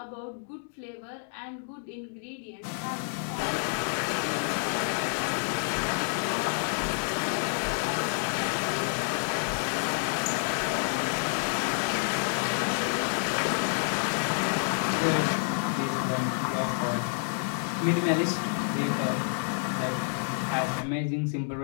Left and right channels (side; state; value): right; silent; 59 dB below the other